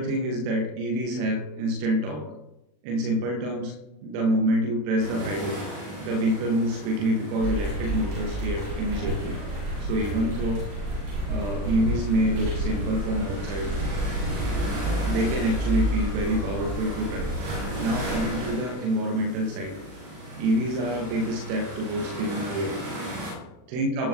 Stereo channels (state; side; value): late; left; 40 ms